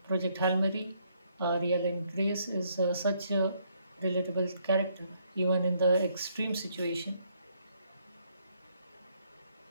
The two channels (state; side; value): inverted; both; correlation -0.71